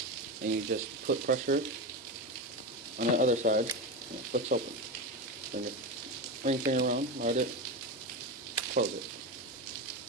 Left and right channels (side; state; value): both; normal; correlation 0.18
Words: And you just put pressure on the other side and it flicks open. Then your ring finger around, light it, close it.